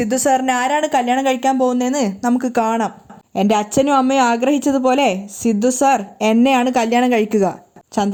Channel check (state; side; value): identical; both; correlation 1.00